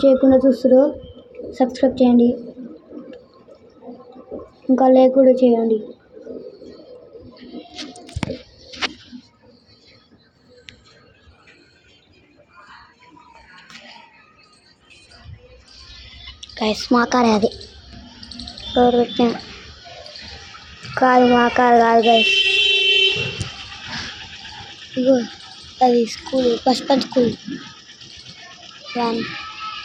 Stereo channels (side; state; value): both; identical; correlation 1.00